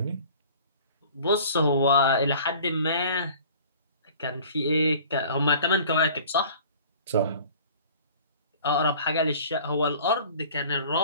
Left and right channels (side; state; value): both; inverted; correlation -0.47